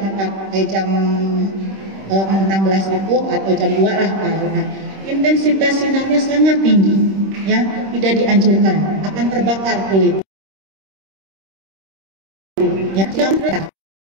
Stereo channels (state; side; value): late; left; 26 ms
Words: jam 16 itu atau jam 2 lah karena intensitas sinarnya sangat tinggi ya, tidak dianjurkan, akan terbakar kulit ya.